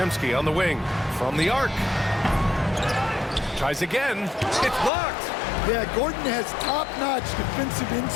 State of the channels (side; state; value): right; drops out; at 4.9 s